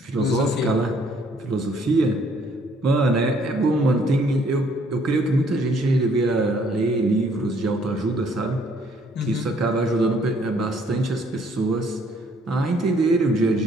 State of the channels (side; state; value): both; normal; correlation 0.64